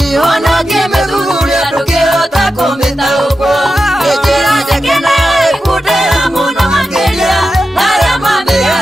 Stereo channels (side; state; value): both; normal; correlation 0.90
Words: ona ngimithuguria ndukihota kumitaukwo njira njekena ikundira muno makiria naria